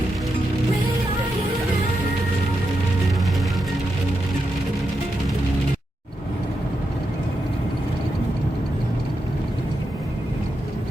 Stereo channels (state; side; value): normal; both; correlation 0.86